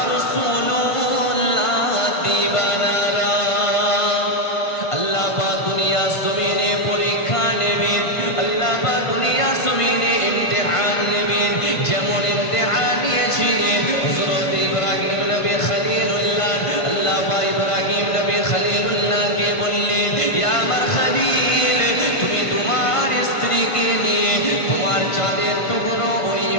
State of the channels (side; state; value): right; late; 1.5 ms